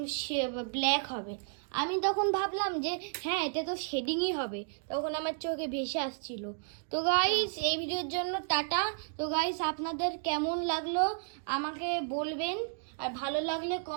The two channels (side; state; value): left; silent; digital silence